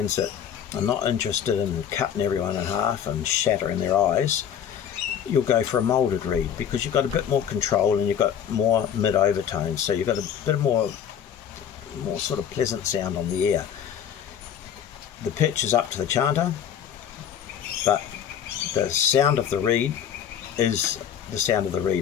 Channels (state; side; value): quieter; right; 8.8 dB